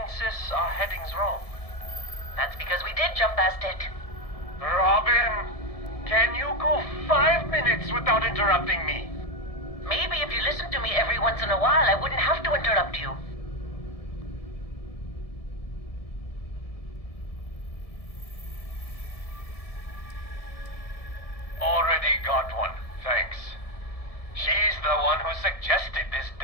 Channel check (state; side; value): late; right; 1.7 ms